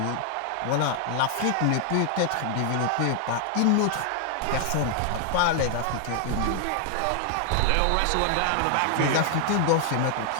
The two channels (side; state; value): both; different; correlation 0.00